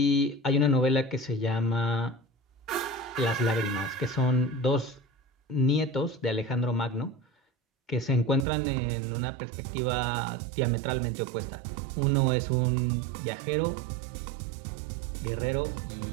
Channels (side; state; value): left; drops out; at 8.5 s